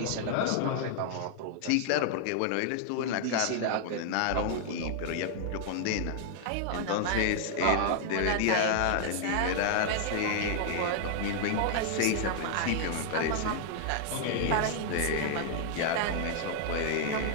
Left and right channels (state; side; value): different; both; correlation -0.01